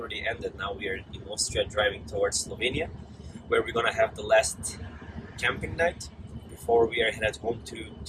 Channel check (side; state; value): both; identical; correlation 1.00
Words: ended. Now we are in Austria driving towards Slovenia, where we're gonna have the last camping night before we are headed home